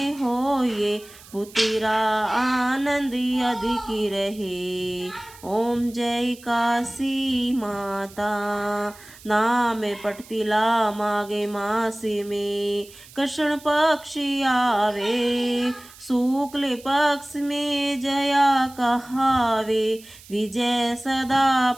हो ये पुत्रा आनंद अधिक रहे। ओम जय काशी माता। नाम पटतिला माघे मास में कृष्ण पक्ष आवे, शुक्ल पक्ष में जया कहावे, विजय सदा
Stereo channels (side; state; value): right; noise; hiss, 21 dB below the sound